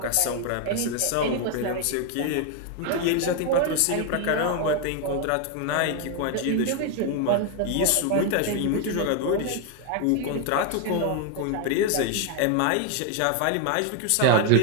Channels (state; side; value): different; both; correlation 0.01